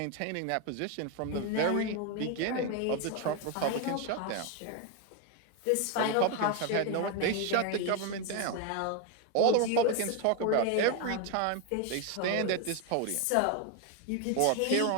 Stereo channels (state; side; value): different; both; correlation 0.01